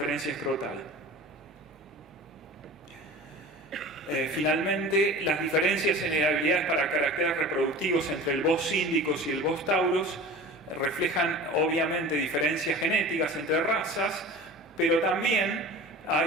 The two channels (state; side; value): normal; both; correlation 0.38